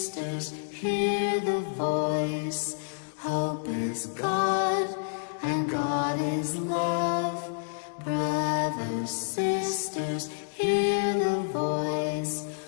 hear the voice. Hope is God, and God is love. Brothers, sisters, hear the voice.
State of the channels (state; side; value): silent; right; digital silence